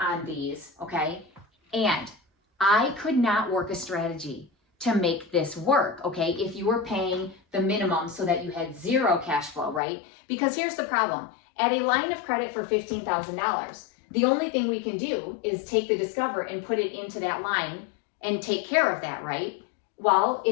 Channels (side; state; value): right; drops out; at 9.8 s